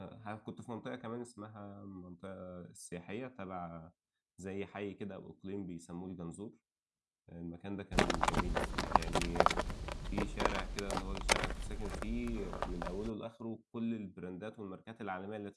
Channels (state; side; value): identical; both; correlation 1.00